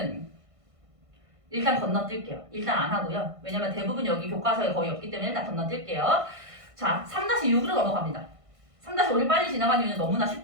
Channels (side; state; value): left; late; 1.5 ms